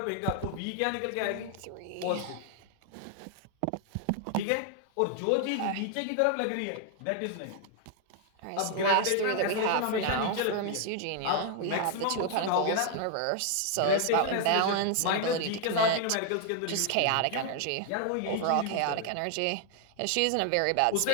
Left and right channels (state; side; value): different; both; correlation 0.00